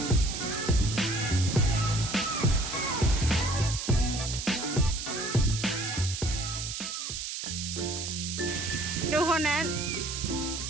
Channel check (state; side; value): noise; right; hiss, 5 dB below the sound